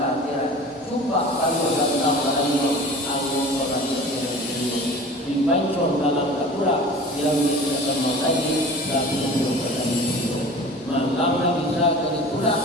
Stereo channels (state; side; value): normal; both; correlation 0.40